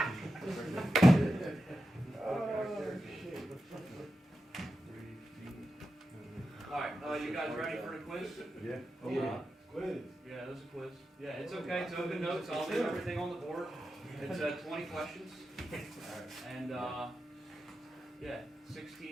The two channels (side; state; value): both; normal; correlation 0.90